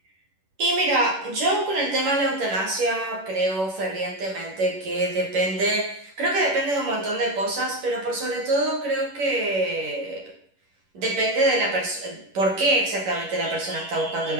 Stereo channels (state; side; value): late; left; 11 ms